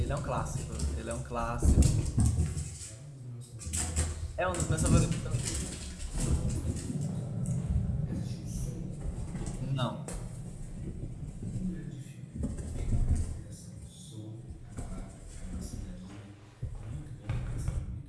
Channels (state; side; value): identical; both; correlation 1.00